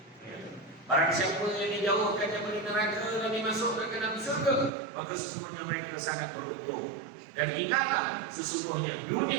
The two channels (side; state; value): left; drops out; at 4.7 s